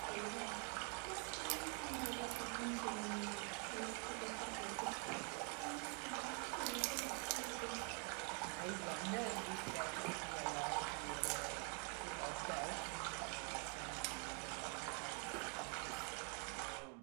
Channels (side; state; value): left; quieter; 38.0 dB